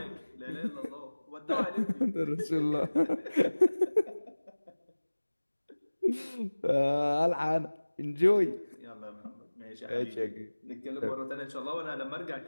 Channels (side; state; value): both; inverted; correlation -1.00